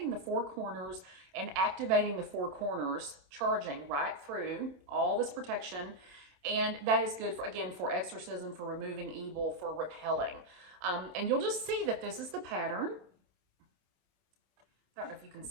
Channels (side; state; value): left; late; 27 ms